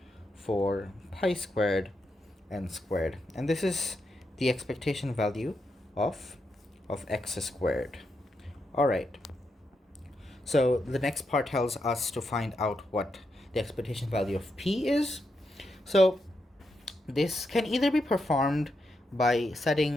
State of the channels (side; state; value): both; normal; correlation 0.83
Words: 4 pi squared n squared. And this is the expectation value of of x squared. All right. So the next part tells us to find out what the expectation value of p is. So this can either be performed by